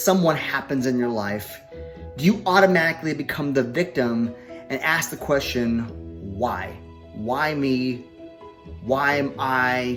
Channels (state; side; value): identical; both; correlation 1.00